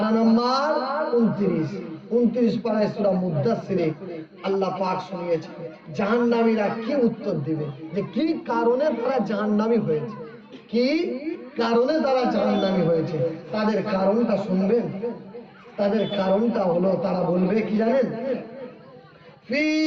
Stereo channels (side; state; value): both; identical; correlation 1.00